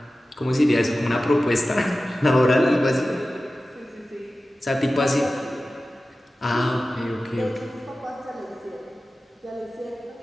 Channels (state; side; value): normal; both; correlation 0.95